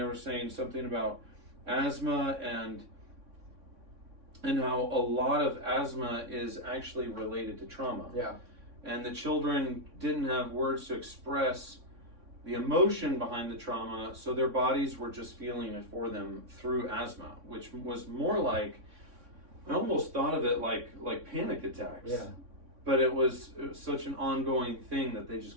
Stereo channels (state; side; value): late; left; 3.6 ms